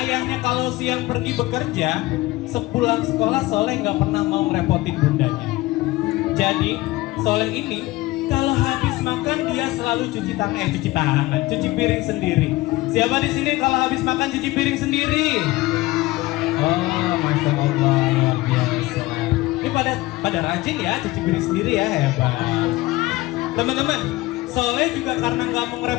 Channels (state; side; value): quieter; right; 19.2 dB